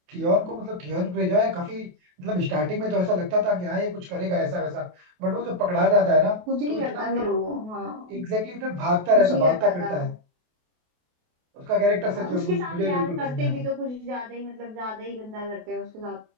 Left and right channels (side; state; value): left; late; 28 ms